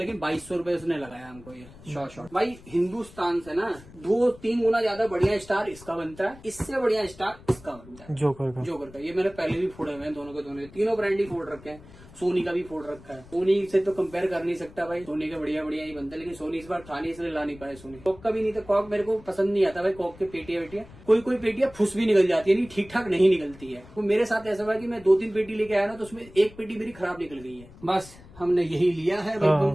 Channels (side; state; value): left; noise; rumble, 20 dB below the sound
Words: 2200 रुपए उसने लगाया हमको ये शॉर्ट। भाई हिंदुस्तान से ना 2-3 गुना ज्यादा बढ़िया स्टार इसका बनता है, इससे बढ़िया स्टार इसका बनता है जोकर का। ये मैंने पहले भी फोड़े हुए हैं दोनों के दोनों, तीनों ब्रांड ही फोड़ रखे हैं। सोनी का भी फोड़ रखा है। सोनी से तो कंपेयर कर नहीं सकता भाई, सोनी का बढ़िया बढ़िया ही बनता है, लेकिन सोनी इस बार था नहीं इसलिए ला नहीं पाए सोनी। कॉक का भी नहीं था, कॉक मेरे को पसंद नहीं आता भाई। कॉक के पेटियां कोई पेटियां फुस भी निकल जाती है, नहीं ठीक ठाक नहीं निकलती है। तो मेरे साथ ऐसा हुआ कि मैं 2-3 पेटी लेके आया ना, तो उसमें एक पेटी मेरी खराब निकल गई है। बस हमने यही लिया है